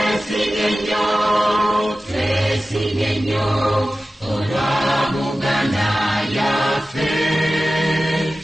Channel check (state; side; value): normal; both; correlation 0.95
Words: twesinye nnyo olwa Buganda yaffe